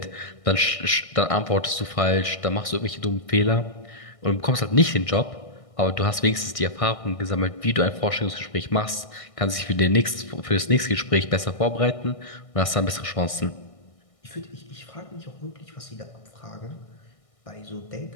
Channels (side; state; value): right; late; 1.6 ms